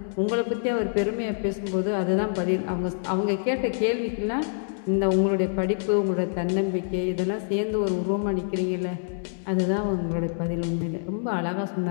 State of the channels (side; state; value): right; silent; 61 dB below the other